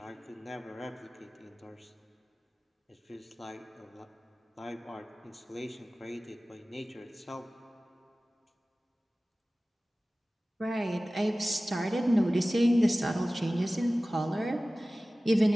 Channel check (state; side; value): normal; both; correlation 0.97